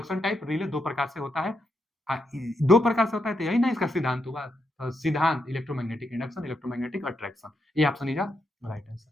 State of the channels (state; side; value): normal; both; correlation 0.82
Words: type, relay दो प्रकार से होता है। दो प्रकार से होता है तो यही ना इसका सिद्धांत हुआ। सिद्धांत इलेक्ट्रोमैग्नेटिक इंडक्शन, इलेक्ट्रोमैग्नेटिक अट्रैक्शन। ये ऑप्शन इज राइट आंसर।